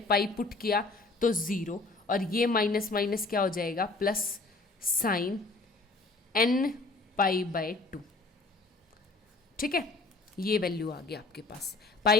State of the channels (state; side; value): quieter; right; 3.4 dB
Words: पुट किया तो 0, और ये माइनस माइनस क्या हो जाएगा plus sign n pi by 2, ठीक है। ये वैल्यू आ गया आपके पास,